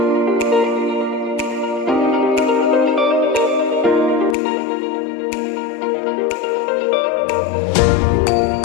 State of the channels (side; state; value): right; drops out; at 4.4 s